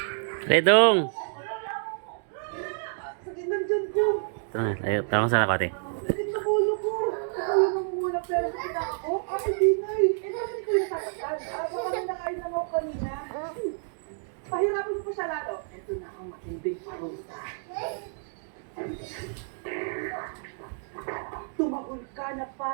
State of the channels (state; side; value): silent; left; digital silence